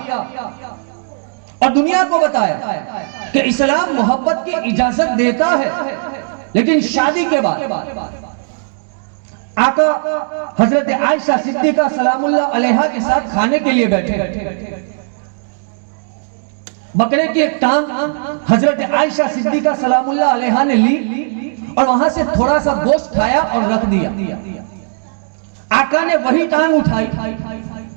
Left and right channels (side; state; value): left; silent; digital silence